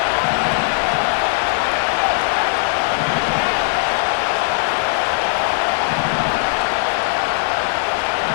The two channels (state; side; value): silent; right; digital silence